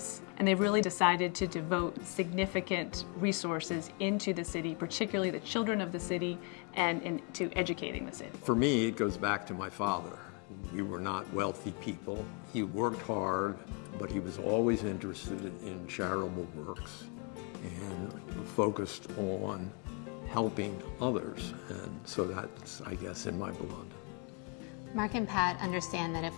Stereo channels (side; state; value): right; quieter; 35.8 dB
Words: and they've really decided to devote significant resources into the city, particularly the children of the city, and into educating the city. For me, it goes back to my father. We were not wealthy people. He worked hard, but he was always interested in charitable works and focused on helping others, and so that's, I guess, in my blood. Mark and Pat understand that